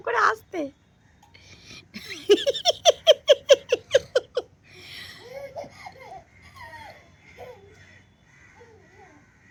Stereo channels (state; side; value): identical; both; correlation 1.00